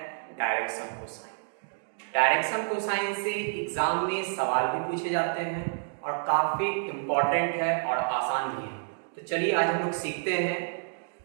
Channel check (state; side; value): silent; left; digital silence